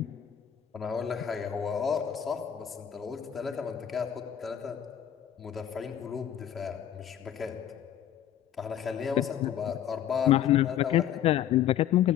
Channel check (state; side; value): quieter; right; 10.2 dB